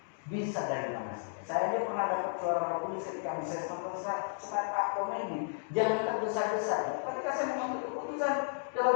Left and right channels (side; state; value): right; silent; digital silence